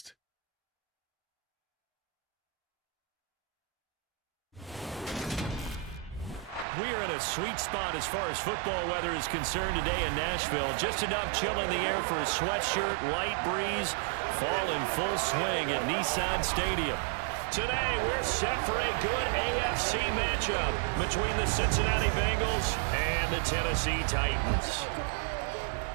We are in a sweet spot as far as football weather is concerned today in Nashville. Just enough chill in the air for a sweatshirt, light breeze, fall in full swing at Nissan Stadium. Today, we're set for a good AFC matchup between the Cincinnati Bengals and the Tennessee Titans.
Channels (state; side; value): drops out; left; at 6.7 s